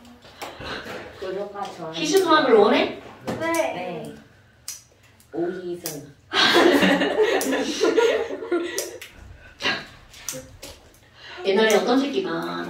구독과 좋아요. 희순화학을 원해? 네. 네. 오희선. 옛날에 어떤 새끼가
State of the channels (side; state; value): both; identical; correlation 1.00